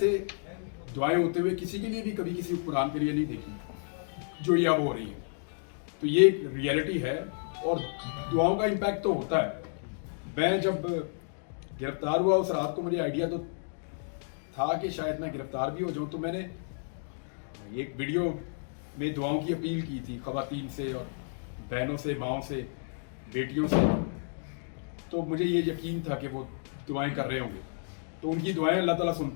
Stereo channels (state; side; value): silent; right; digital silence